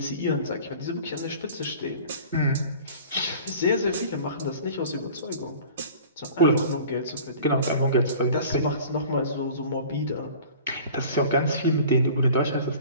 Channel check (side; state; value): both; inverted; correlation -0.43